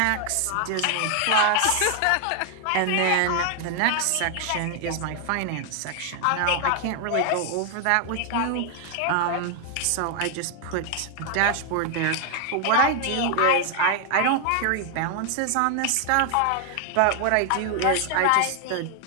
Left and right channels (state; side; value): different; both; correlation 0.00